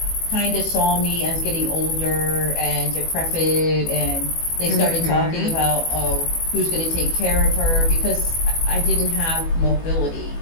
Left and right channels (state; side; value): late; right; 18 ms